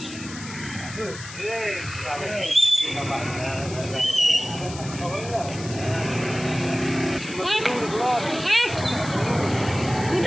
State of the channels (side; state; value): left; noise; hiss, 13 dB below the sound